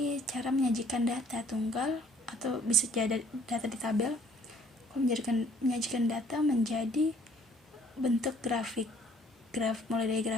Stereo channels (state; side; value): normal; both; correlation 0.58